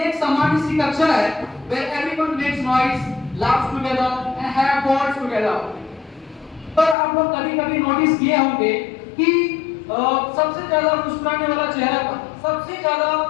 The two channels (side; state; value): right; drops out; at 7.0 s